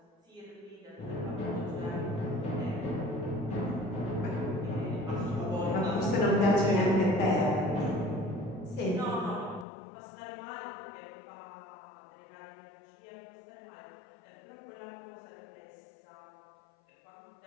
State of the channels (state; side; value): drops out; right; at 9.7 s